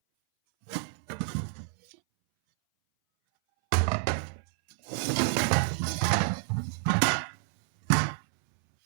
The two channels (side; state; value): left; silent; 59 dB below the other